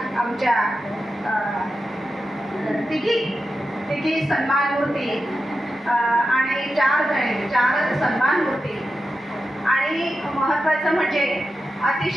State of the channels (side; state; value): both; normal; correlation 0.90